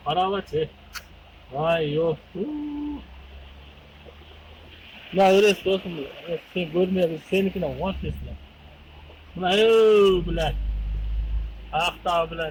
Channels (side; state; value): both; identical; correlation 1.00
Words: Qarabaçı. Ay yok. Ya öylesi dostum. Sen görmeyebilirsin. Seninkine konuşuyorsun. Buna biler. Ayakta